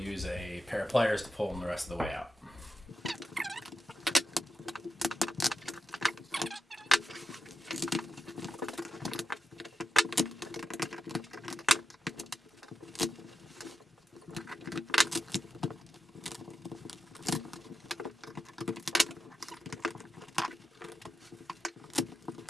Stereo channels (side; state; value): both; normal; correlation 0.90